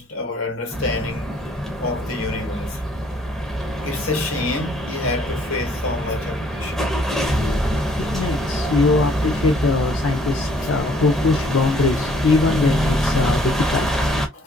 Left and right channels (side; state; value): both; normal; correlation 0.61